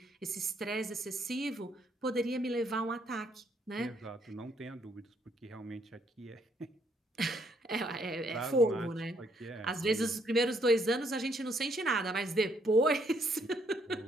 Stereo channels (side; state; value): both; normal; correlation 0.70